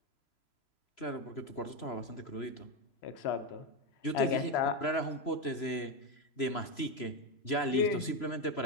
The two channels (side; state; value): right; late; 3.0 ms